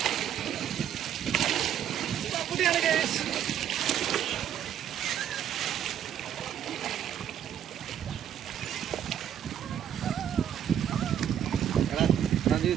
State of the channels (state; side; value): quieter; left; 9.9 dB